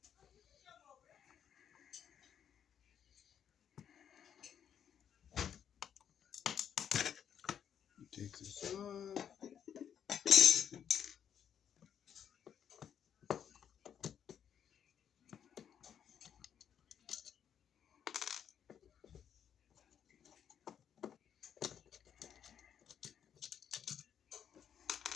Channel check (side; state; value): right; quieter; 8.7 dB